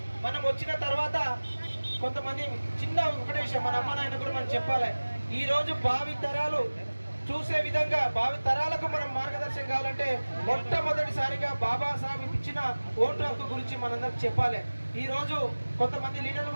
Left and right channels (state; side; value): inverted; both; correlation -1.00